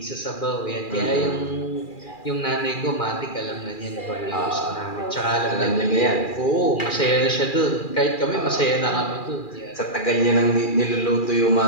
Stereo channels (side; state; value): right; late; 2.4 ms